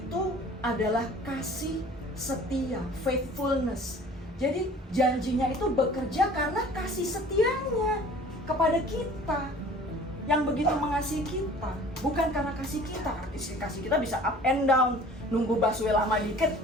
adalah kasih setia, faithfulness. Jadi janjinya itu bekerja karena kasih setianya kepada kita yang begitu mengasihi kita, bukan karena kasih kita. Kasih kita bisa up and down, nunggu busway lama dikit,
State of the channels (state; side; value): normal; both; correlation 0.48